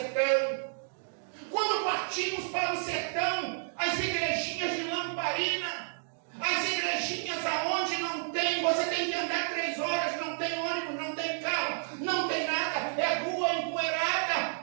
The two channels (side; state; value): left; silent; digital silence